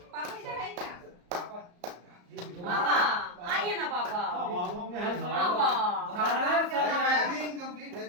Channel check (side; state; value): left; late; 34 ms